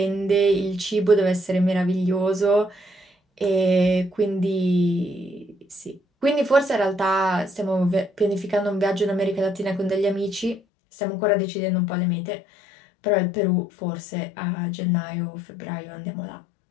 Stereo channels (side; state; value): right; drops out; at 10.6 s